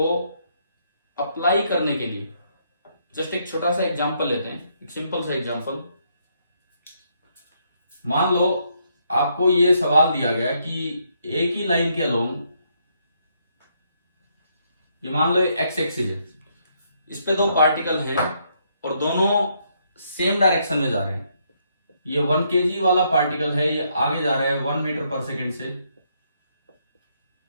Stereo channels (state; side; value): inverted; both; correlation -0.74